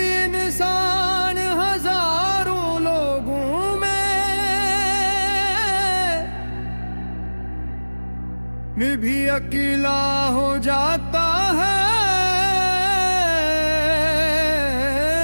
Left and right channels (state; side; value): inverted; both; correlation -1.00